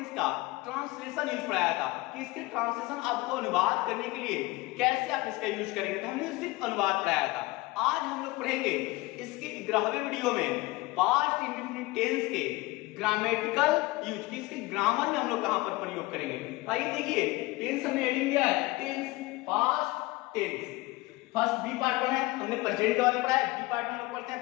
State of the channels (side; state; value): right; quieter; 21.0 dB